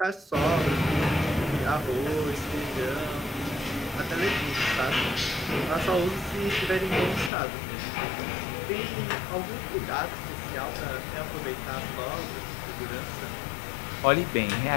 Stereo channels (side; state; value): right; drops out; at 7.3 s